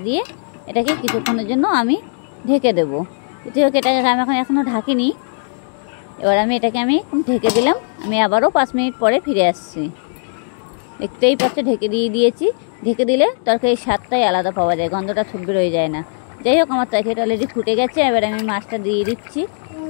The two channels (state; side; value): silent; right; digital silence